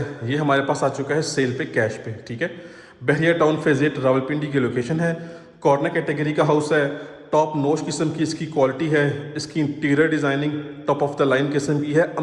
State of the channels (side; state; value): both; identical; correlation 1.00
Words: ये हमारे पास आ चुका है सेल पे, कैश पे। ठीक है, बहरिया टाउन फेज़ 8 रावलपिंडी की लोकेशन है। कॉर्नर कैटेगरी का हाउस है। टॉप नॉच किस्म की इसकी क्वालिटी है। इसकी interior designing top of the line किस्म की है,